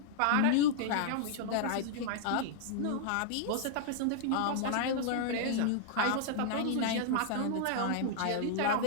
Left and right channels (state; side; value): different; both; correlation -0.01